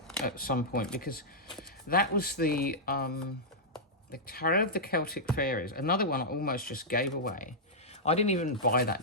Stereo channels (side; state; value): both; normal; correlation -0.10